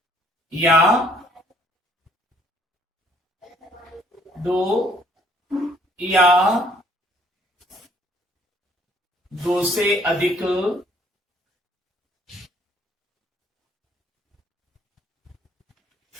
या दो या दो से अधिक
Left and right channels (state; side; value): normal; both; correlation 0.62